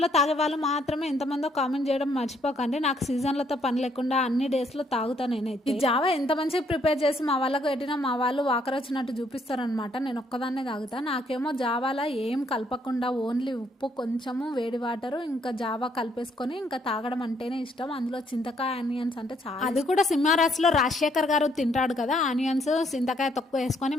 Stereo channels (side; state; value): both; normal; correlation 0.69